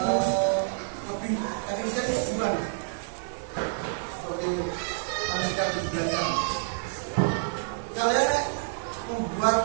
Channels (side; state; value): left; silent; digital silence